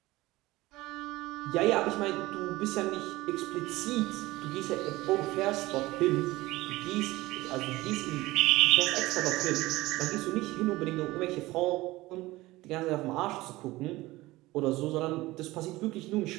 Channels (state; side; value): quieter; left; 19.1 dB